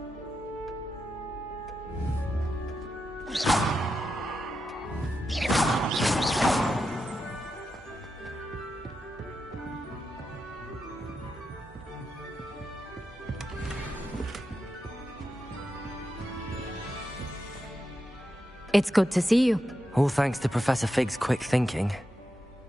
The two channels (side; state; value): both; normal; correlation 0.88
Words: It's good to see you. All thanks to Professor Fig's quick thinking.